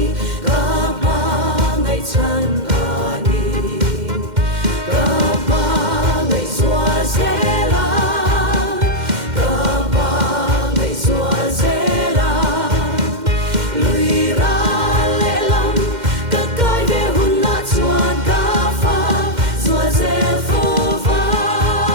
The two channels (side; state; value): left; late; 2.1 ms